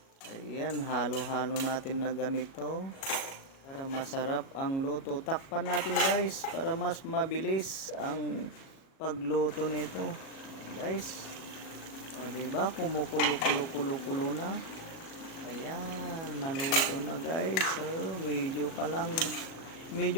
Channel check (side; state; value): right; late; 37 ms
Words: Ayan, halo-halo natin na ganito para masarap ang luto. Takpan natin guys para mas mabilis ang pagluto nito guys. Diba kumukulo na. Ayan, naluto na guys. Medyo